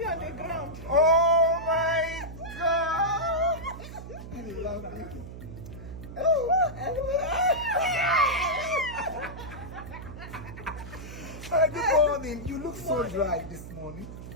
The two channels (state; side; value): noise; right; hum, 12 dB below the sound